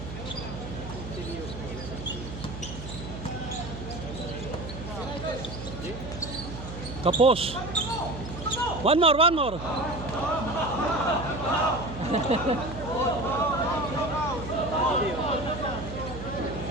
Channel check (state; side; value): noise; right; hum, 10 dB below the sound